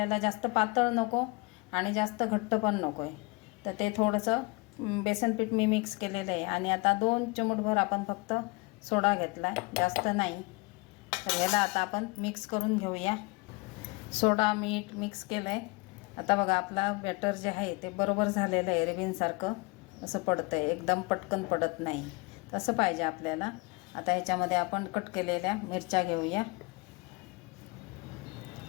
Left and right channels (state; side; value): quieter; right; 26.3 dB